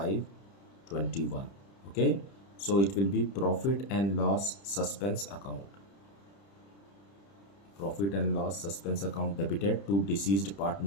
Okay, so it will be profit and loss suspense account. Profit and loss suspense account debited to deceased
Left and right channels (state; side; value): late; right; 30 ms